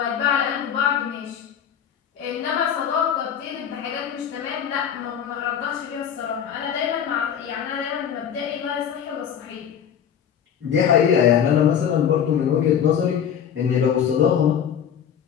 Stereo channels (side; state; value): right; quieter; 8.6 dB